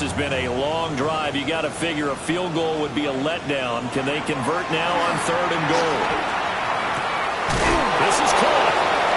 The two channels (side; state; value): both; identical; correlation 1.00